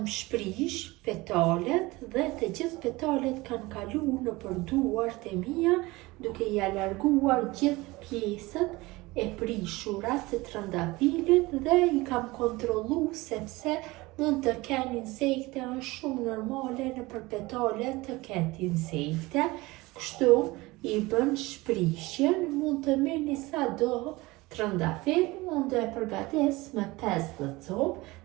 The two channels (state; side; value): quieter; left; 21.4 dB